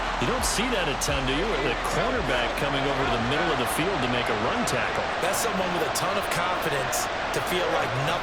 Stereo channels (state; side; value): identical; both; correlation 1.00